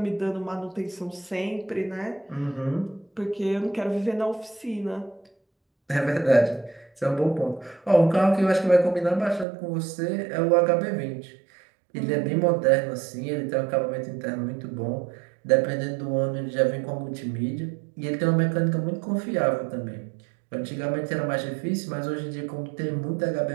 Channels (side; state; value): left; drops out; at 9.5 s